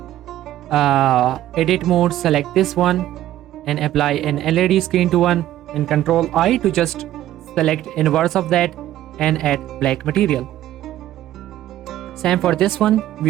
edit mode, select this one and apply an LED screen to one, and Control I to just select inverse of that and add black material. Same for this one,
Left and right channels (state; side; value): quieter; left; 13.4 dB